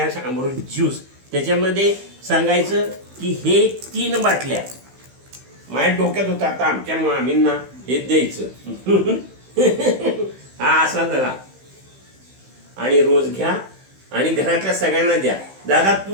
अमृत ज्यूस. त्याच्यामध्ये सांगायचं की हे 3 बाटल्या माझ्या डोक्यात होता. आता आमच्या मामींना हे द्यायचं. हा असा धरा आणि रोज घ्या आणि घरातल्या सगळ्यांना द्या. दादा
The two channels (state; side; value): late; left; 15 ms